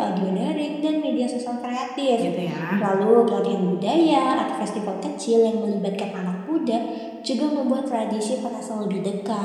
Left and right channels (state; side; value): identical; both; correlation 1.00